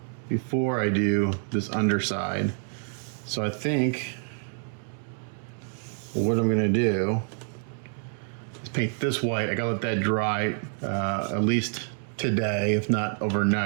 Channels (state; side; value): silent; left; 59 dB below the other